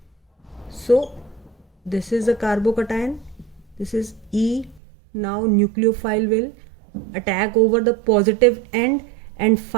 So this is the carbocation, this is E. Now nucleophile will attack over the positive end, and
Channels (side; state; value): left; drops out; at 4.8 s